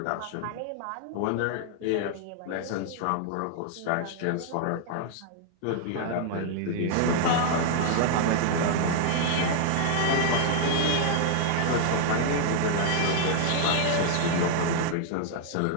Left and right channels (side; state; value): both; different; correlation 0.00